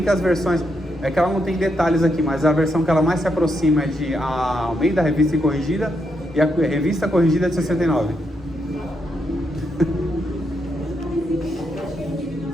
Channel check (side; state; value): both; normal; correlation 0.80